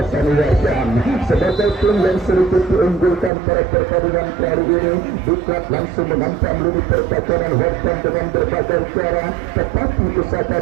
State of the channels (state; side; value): drops out; left; at 3.3 s